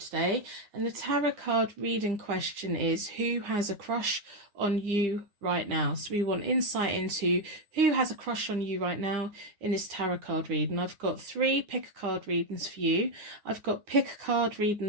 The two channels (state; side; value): late; left; 9.6 ms